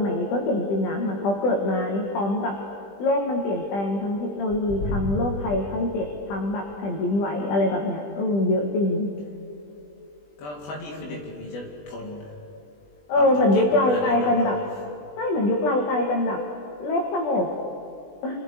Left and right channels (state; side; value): late; right; 20 ms